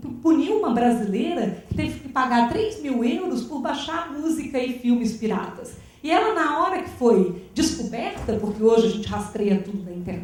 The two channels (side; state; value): both; identical; correlation 1.00